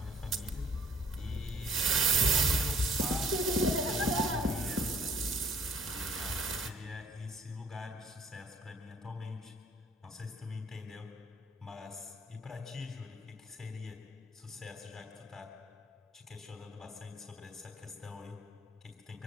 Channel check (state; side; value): normal; both; correlation 0.58